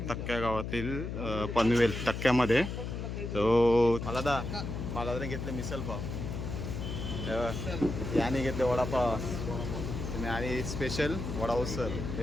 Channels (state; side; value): noise; left; hum, 5 dB below the sound